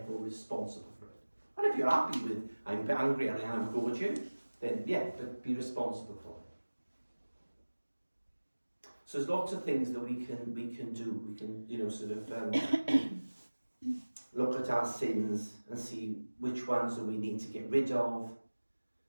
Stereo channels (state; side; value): inverted; both; correlation -1.00